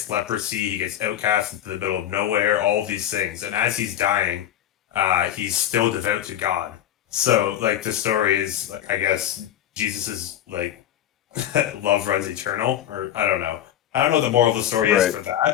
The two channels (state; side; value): quieter; right; 11.3 dB